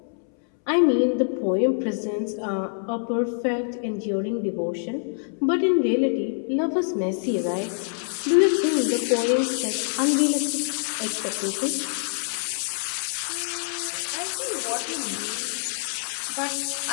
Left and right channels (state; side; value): silent; right; 61 dB below the other